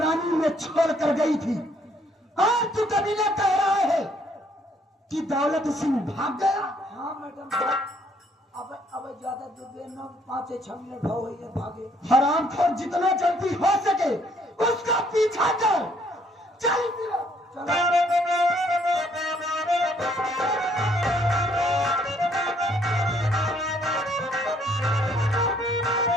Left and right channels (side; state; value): both; normal; correlation 0.66